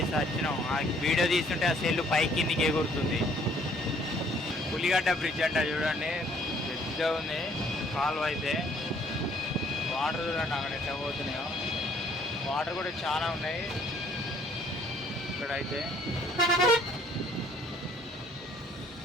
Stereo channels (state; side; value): normal; both; correlation 0.61